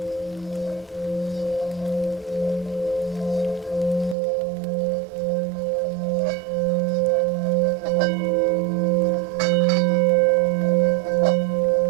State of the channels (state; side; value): drops out; left; at 4.2 s